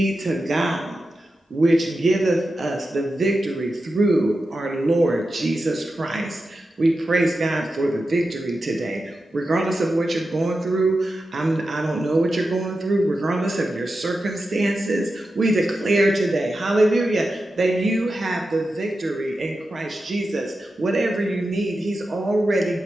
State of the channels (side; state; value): both; normal; correlation 0.91